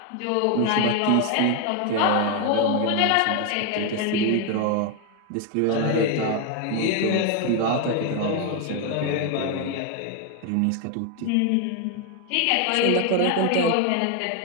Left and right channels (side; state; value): both; different; correlation 0.01